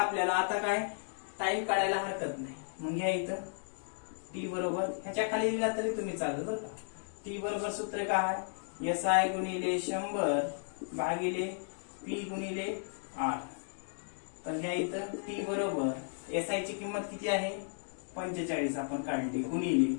आता काय टाइम काढायला हरकत नाही. मग घ्या इथं टी बरोबर ह्याच्या खाली दिला तरी तुम्ही चालत बरं का. टी बरोबर सूत्र काय एसआय गुणिले 100 भागिले पी गुणिले आर. तर घ्या इथं टी बरोबर एसआय ची किंमत किती आहे 45 आपण काढली गुणिले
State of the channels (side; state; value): right; silent; digital silence